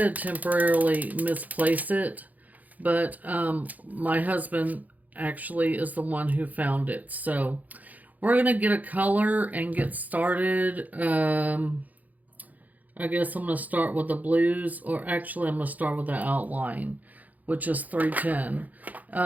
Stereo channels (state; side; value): late; left; 0.079 ms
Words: temporarily misplace it. But my husband actually is the one who found it. So we're going to get a color and get started. I guess I'm going to start with the blues, or actually I'm going to start with the outline, which is 310.